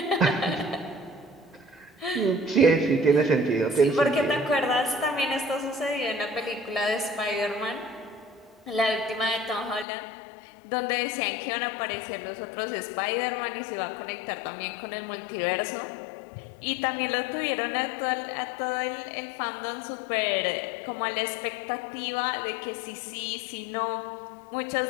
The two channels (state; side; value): drops out; right; at 9.9 s